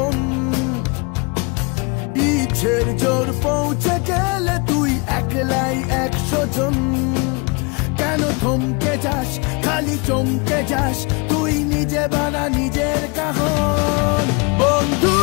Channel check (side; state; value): right; quieter; 31.1 dB